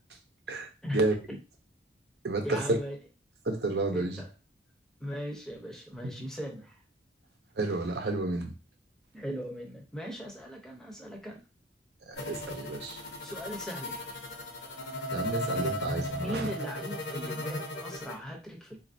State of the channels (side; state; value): both; normal; correlation 0.37